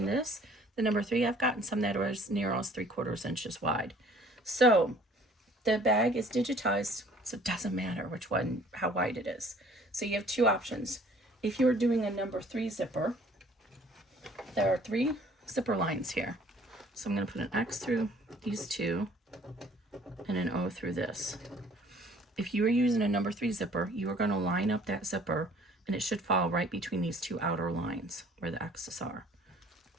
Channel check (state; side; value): normal; both; correlation 0.55